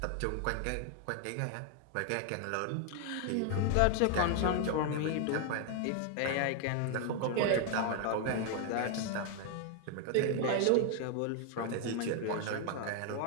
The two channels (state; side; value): different; both; correlation 0.00